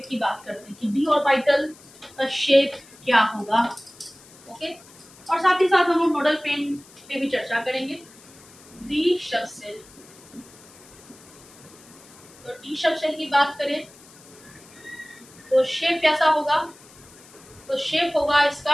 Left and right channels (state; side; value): noise; left; hiss, 23 dB below the sound